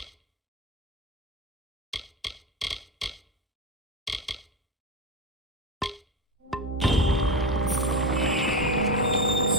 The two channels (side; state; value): both; normal; correlation 0.18